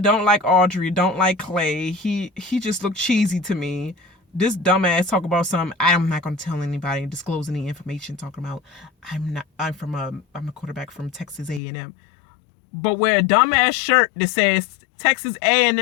don't like Audrey, don't like Clay. He just looked cheesy to me. This dumbass talk about something. I'm not gonna tell anybody, disclose any information, talking about I'm a quarterback from Texas A&M. But wear a dumbass shirt that says Texas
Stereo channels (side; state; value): right; drops out; at 11.6 s